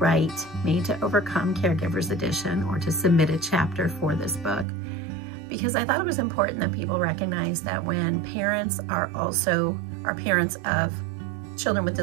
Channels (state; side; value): drops out; left; at 4.7 s